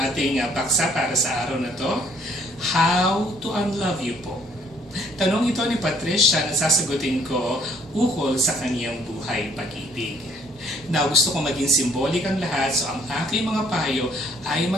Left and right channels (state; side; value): normal; both; correlation 0.62